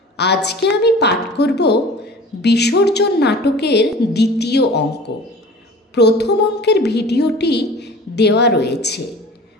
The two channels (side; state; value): both; normal; correlation 0.41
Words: আজকে আমি পাঠ করব বিসর্জন নাটকের দ্বিতীয় অঙ্ক। প্রথম অঙ্কের ভিডিওটি দেওয়া রয়েছে।